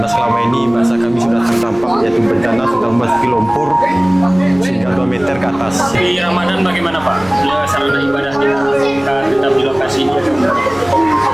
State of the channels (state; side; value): noise; right; rumble, 21 dB below the sound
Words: selama ini masa kami sudah terdampak yaitu bencana sudah memasuki lumpur sehingga 2 meter ke atas. Di Ramadan bagaimana Pak? Ya, sarana ibadahnya tetap di lokasi ini?